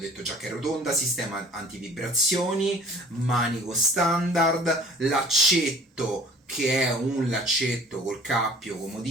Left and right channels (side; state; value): both; normal; correlation 0.48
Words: detto già che è rotonda, sistema antivibrazioni, manico standard, laccetto che è un laccetto col cappio